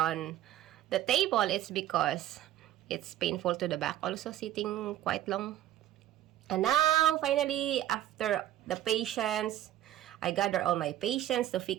the table. It's because it's painful to the back also, sitting quite long. And now, finally, after the patience, I gather all my patience to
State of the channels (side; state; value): left; quieter; 12.8 dB